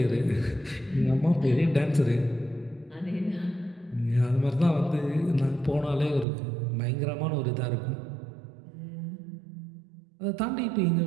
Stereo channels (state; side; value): drops out; left; at 6.2 s